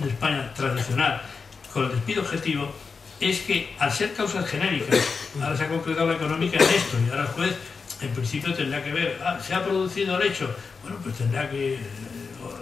España tradicional con el despido objetivo es que al ser causas genéricas, ahora se ha concretado la económica en esto y ahora el juez en principio tendrá que ver, ¿se ha producido el hecho? Bueno, pues tendrá que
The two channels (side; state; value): right; quieter; 5.0 dB